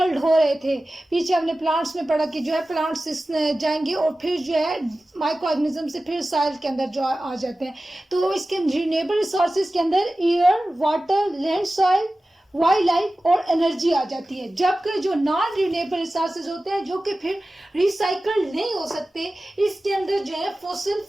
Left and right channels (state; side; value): normal; both; correlation 0.95